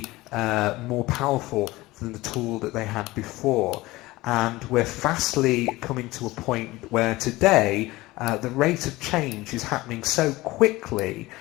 more powerful than the tool that they had before. And we're fastly coming to a point where today the rate of change is happening so quickly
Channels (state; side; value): quieter; right; 19.5 dB